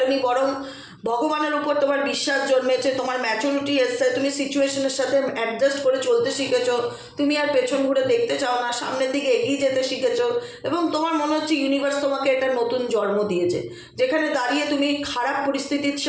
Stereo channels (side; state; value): both; identical; correlation 1.00